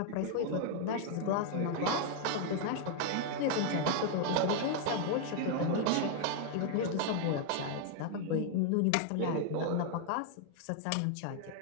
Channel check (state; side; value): different; both; correlation 0.00